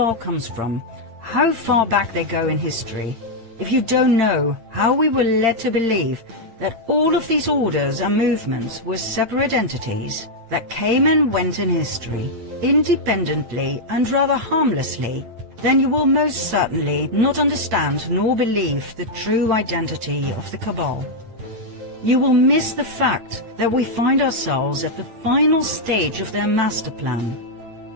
comes from, how far back they go in history, if you don't know how we were led to believe that all of these orders and movements were separate entities that came and went in history, independently and rather harmlessly, then you will most certainly not understand nor believe the true identity of the Cabal. You will miss the fact that we find ourselves at the final stage of their master plan.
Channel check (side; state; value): left; late; 8.8 ms